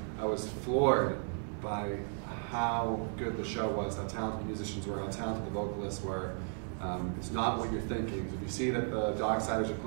I was floored by how good the show was, how talented the musicians were, how talented the vocalists were. It's not what you're thinking. If you see that the Docksiders are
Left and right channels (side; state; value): left; silent; 55 dB below the other